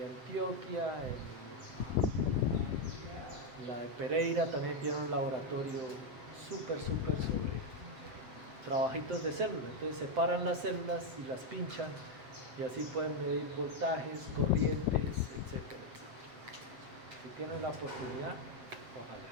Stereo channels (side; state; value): left; late; 7.8 ms